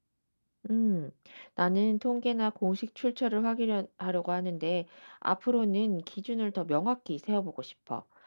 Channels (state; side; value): inverted; both; correlation -1.00